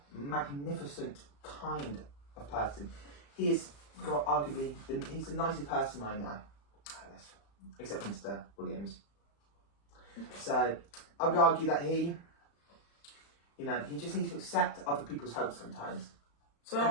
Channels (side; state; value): right; late; 35 ms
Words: magnificent kind of person. He is arguably he's the nicest person I know, Ellis, except Mr. Williams. So I would argue that he just needs to accept other people's help sometimes.